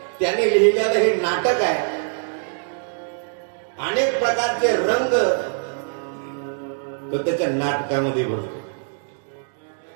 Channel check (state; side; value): silent; left; digital silence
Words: लिहिलेलं हे नाटक आहे. अनेक प्रकारचे रंग तो त्याच्या नाटकामध्ये भरतो.